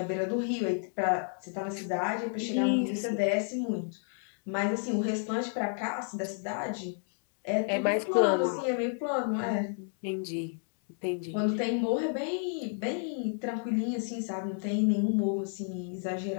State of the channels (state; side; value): silent; right; 57 dB below the other